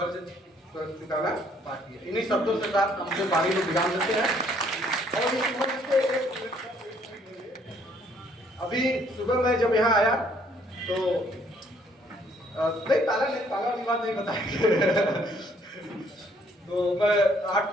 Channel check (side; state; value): both; normal; correlation 0.64